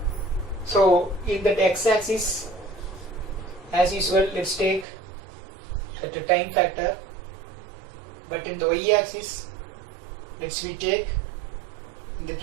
so in that x-axis, as usual, let's take the time factor, but in the y-axis, we take, in the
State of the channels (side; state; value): left; drops out; at 4.9 s